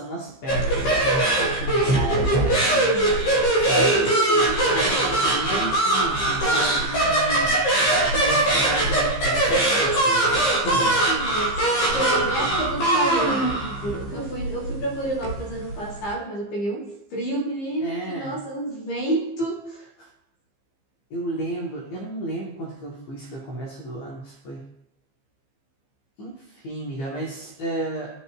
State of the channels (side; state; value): right; late; 15 ms